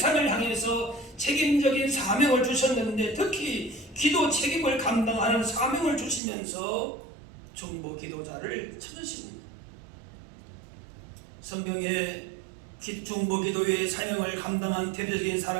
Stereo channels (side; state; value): left; drops out; at 6.2 s